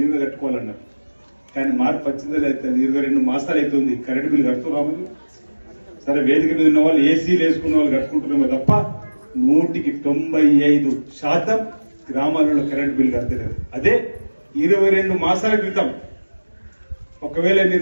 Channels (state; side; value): inverted; both; correlation -1.00